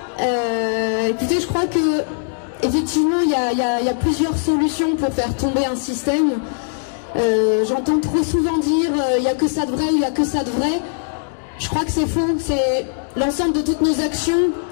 Écoutez, je crois que effectivement il y a plusieurs solutions pour faire tomber un système. J'entends trop souvent dire il n'y a que ça de vrai ou il n'y a que ça de vrai. Je crois que c'est faux, c'est l'ensemble de toutes nos actions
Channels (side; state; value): right; silent; digital silence